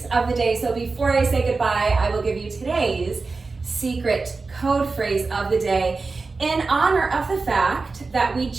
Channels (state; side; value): quieter; left; 4.0 dB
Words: of the day. So before I say goodbye, I will give you today's secret code phrase of the day. In honor of the fact that we